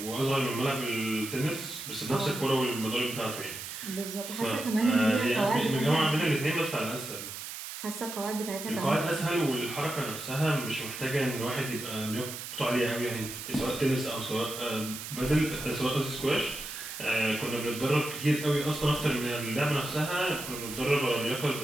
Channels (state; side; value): noise; right; hiss, 8 dB below the sound